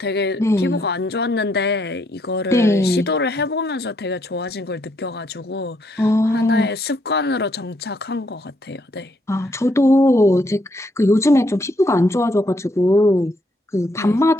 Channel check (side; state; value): both; normal; correlation 0.73